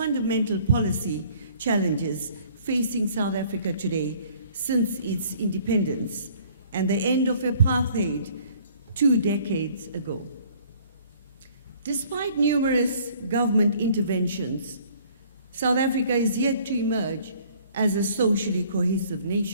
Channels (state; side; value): inverted; both; correlation -0.57